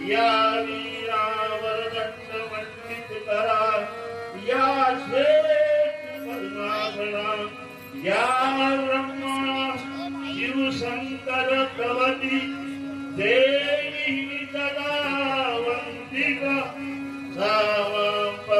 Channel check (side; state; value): both; identical; correlation 1.00